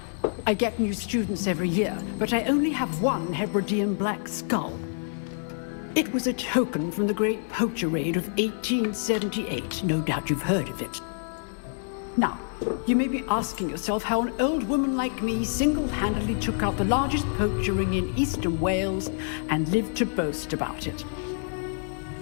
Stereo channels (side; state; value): right; silent; digital silence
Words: I get new students every year, but I only have one Hebridean black skull. It was a token from the Great Poacher Raid of 1878. No doubt you've heard of it. Now, you may be asking yourself how an old woman like me single-handedly took out the largest poacher ring in eastern Wales and lived to boast about it.